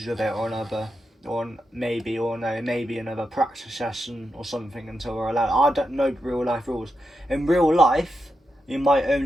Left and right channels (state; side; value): normal; both; correlation 0.87